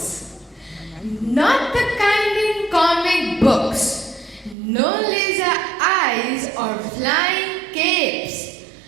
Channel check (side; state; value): left; drops out; at 4.5 s